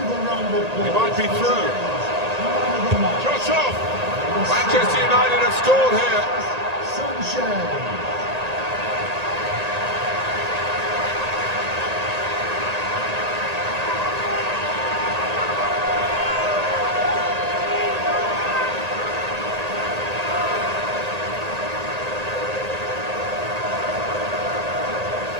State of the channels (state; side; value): late; left; 1.8 ms